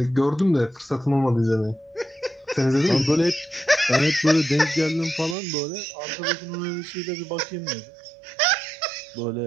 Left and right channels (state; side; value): drops out; left; at 5.4 s